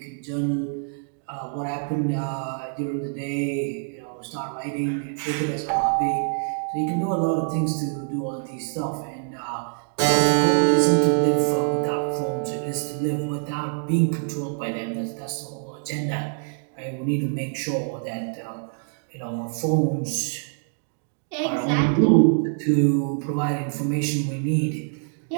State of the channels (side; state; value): left; silent; 61 dB below the other